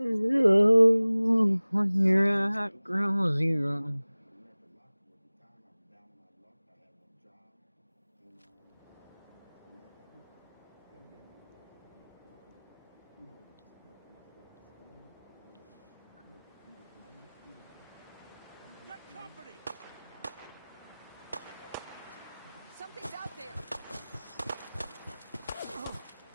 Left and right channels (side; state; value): both; inverted; correlation -0.99